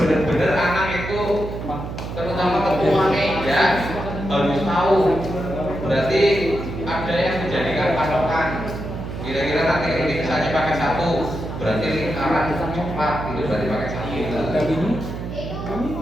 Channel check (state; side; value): noise; right; hum, 7 dB below the sound